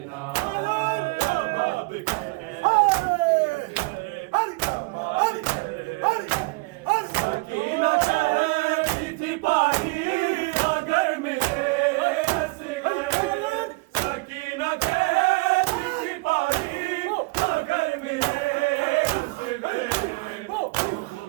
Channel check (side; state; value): left; quieter; 27.4 dB